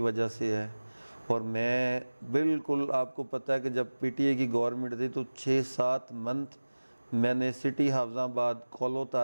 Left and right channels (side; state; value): both; inverted; correlation -1.00